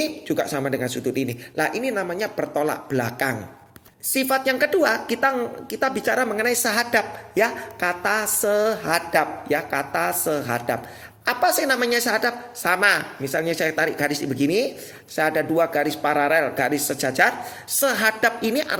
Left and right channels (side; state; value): both; identical; correlation 1.00